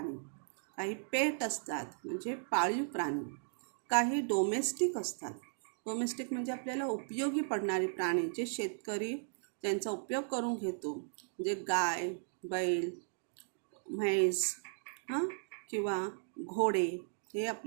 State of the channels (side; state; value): left; silent; digital silence